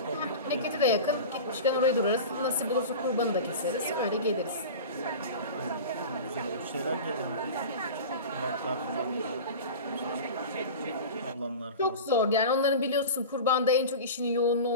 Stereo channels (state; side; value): inverted; both; correlation -0.31